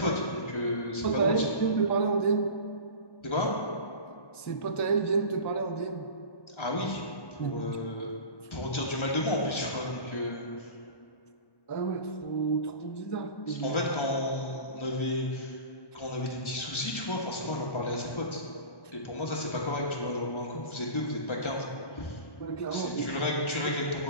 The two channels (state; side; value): late; right; 1.1 ms